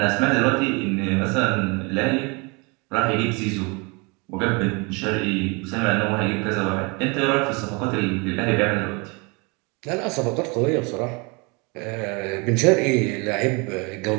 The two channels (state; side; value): quieter; left; 29.5 dB